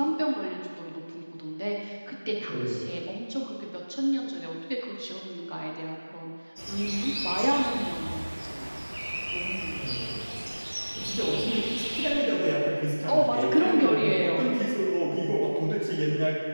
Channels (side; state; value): both; inverted; correlation -1.00